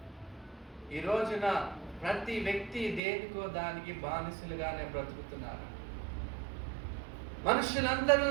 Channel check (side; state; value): left; drops out; at 3.0 s